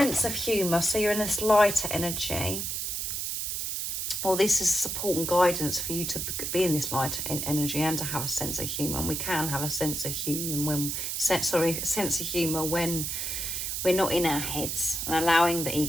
of humour. So you're in this lighter energy. Well, this is support and guidance for you to be in this light energy and to have a sense of humour. And we can have a sense of humour when we're not in our heads and allowing the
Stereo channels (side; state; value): right; noise; hiss, 2 dB below the sound